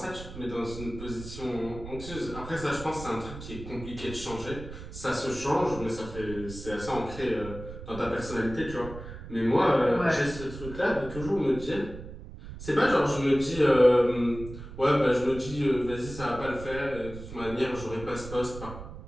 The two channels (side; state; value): right; noise; rumble, 12 dB below the sound